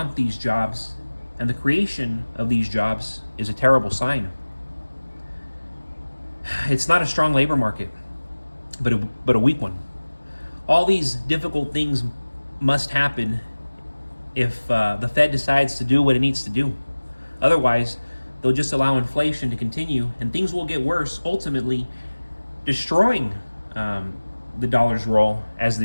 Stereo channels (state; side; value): inverted; both; correlation -1.00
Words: these jobs, and the creation of these jobs is a terrible sign. It's not a strong labor market, but a weak one. All these difficult things must happen if the Fed decides to do what it needs to do. Otherwise, they'll just allow inflation to continue, and things will get worse, ultimately destroying the dollar's role as